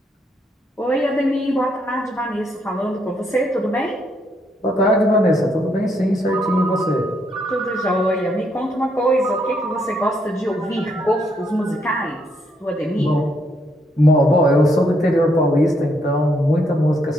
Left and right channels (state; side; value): normal; both; correlation 0.74